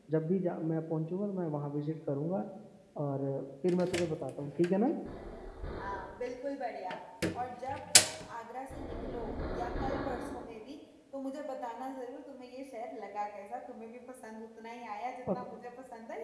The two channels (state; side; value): identical; both; correlation 1.00